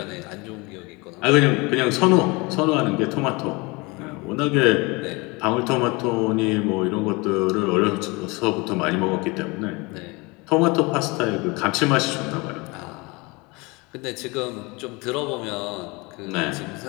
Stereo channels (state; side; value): quieter; right; 26.1 dB